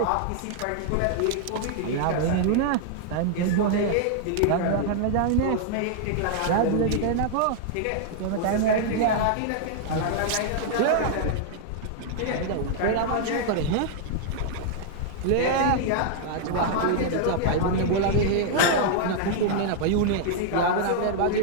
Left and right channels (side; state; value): both; different; correlation -0.01